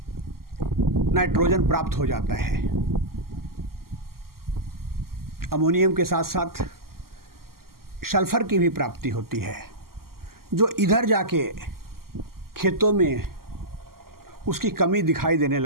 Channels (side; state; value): left; late; 0.92 ms